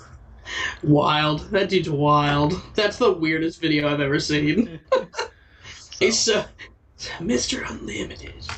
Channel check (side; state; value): both; identical; correlation 1.00